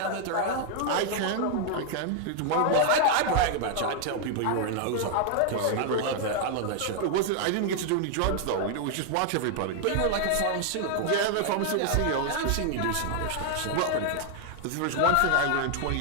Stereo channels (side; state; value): both; different; correlation 0.00